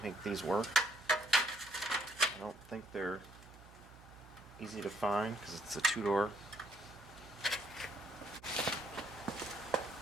make these work. I don't think they're easy to find because it's a two-door.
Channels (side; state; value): right; noise; hum, 20 dB below the sound